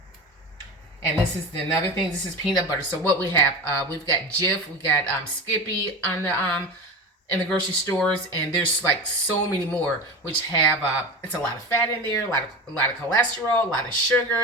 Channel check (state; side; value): normal; both; correlation 0.27